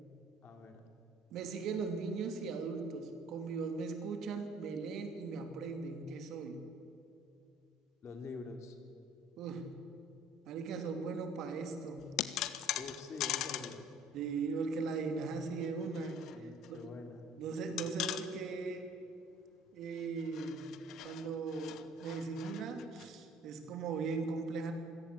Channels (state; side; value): normal; both; correlation 0.53